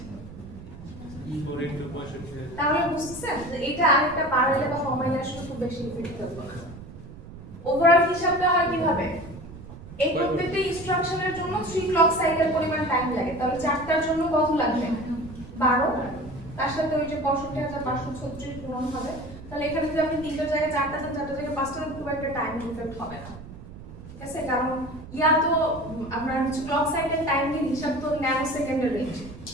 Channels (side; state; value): right; noise; rumble, 15 dB below the sound